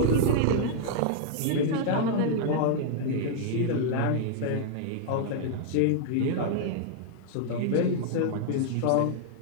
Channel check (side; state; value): both; different; correlation -0.01